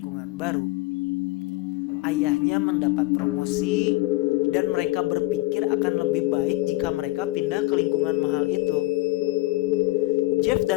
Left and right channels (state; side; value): quieter; right; 19.6 dB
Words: baru. Ayahnya mendapat promosi dan mereka berpikir akan lebih baik jika mereka pindah ke lingkungan mahal itu. Jeff